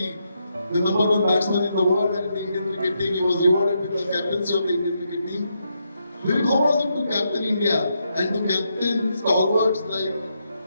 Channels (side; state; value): both; inverted; correlation -0.81